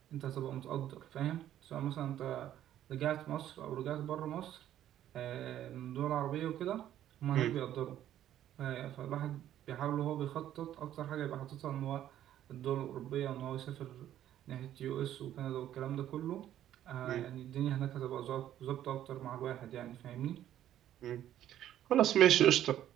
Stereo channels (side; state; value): left; quieter; 11.8 dB